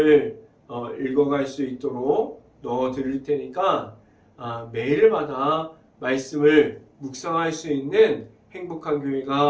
읽어갈 수 있도록 넣어 드릴 테니까 매일마다 말씀을 묵상할 수 있는 행복한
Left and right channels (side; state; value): both; identical; correlation 1.00